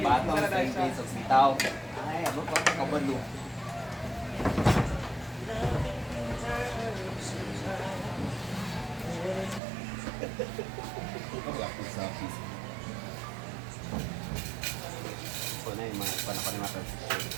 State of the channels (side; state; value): left; drops out; at 9.6 s